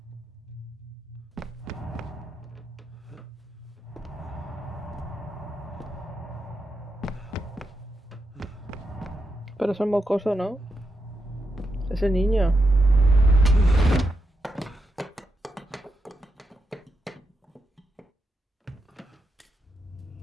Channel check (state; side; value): normal; both; correlation 0.85